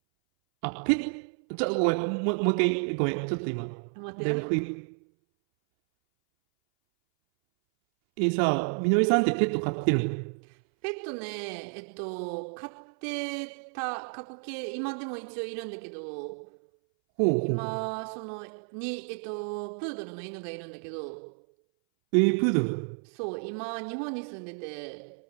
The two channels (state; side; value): silent; left; 58 dB below the other